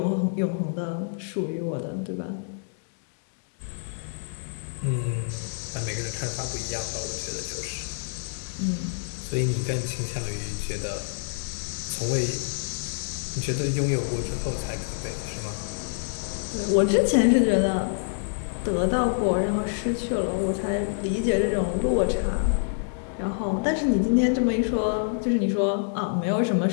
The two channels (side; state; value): right; silent; digital silence